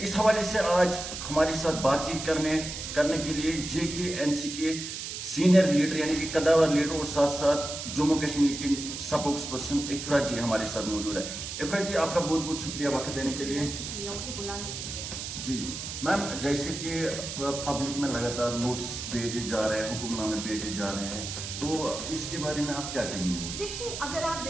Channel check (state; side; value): noise; right; hiss, 7 dB below the sound